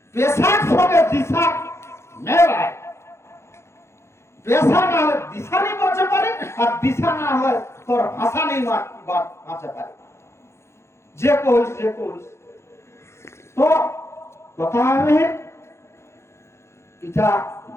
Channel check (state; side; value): late; right; 0.13 ms